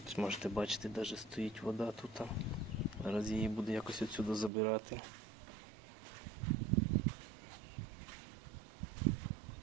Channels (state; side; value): drops out; left; at 4.5 s